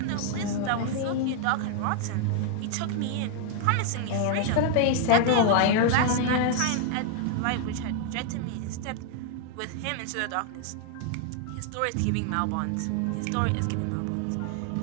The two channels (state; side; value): different; both; correlation 0.00